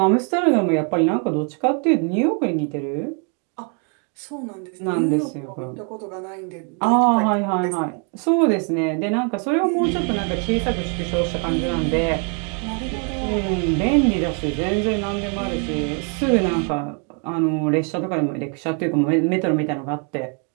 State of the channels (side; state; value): left; quieter; 39.5 dB